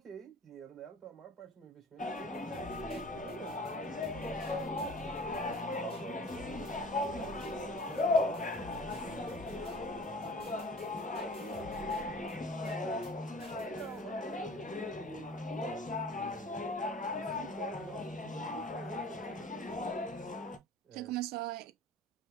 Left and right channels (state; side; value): normal; both; correlation 0.44